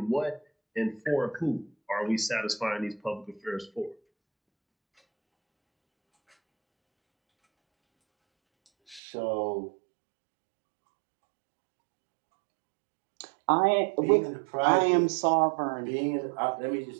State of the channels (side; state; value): left; drops out; at 9.0 s